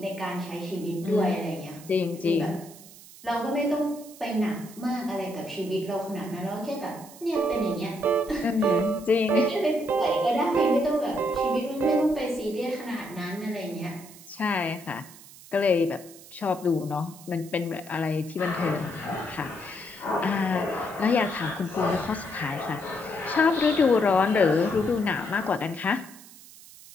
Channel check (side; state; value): right; noise; hiss, 19 dB below the sound